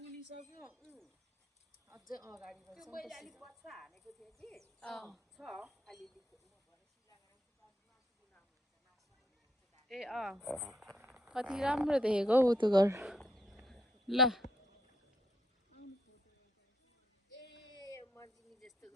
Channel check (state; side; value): normal; both; correlation 0.75